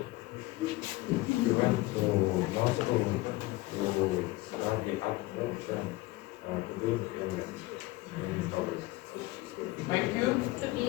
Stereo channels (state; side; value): quieter; right; 19.9 dB